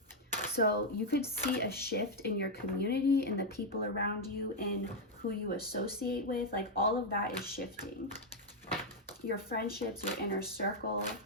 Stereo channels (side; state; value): both; normal; correlation 0.01